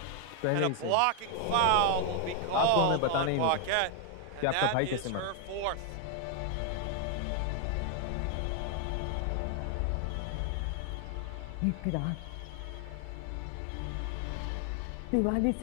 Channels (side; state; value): both; different; correlation 0.00